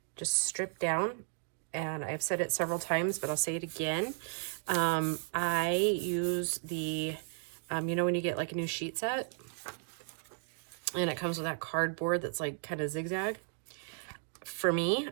just stripped down, and I've said it several times, but I'll say it again. I use the, you know when you get like a new sheet set, and it comes with that cardboard that's like kind of zigzag. For me,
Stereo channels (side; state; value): left; silent; 55 dB below the other